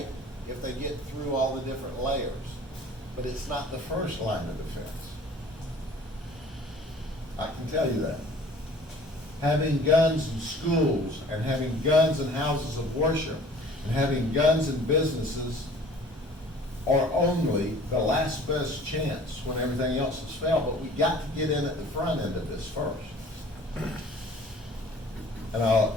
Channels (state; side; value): normal; both; correlation 0.48